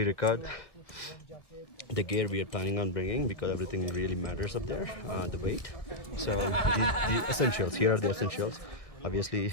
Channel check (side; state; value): right; late; 1.8 ms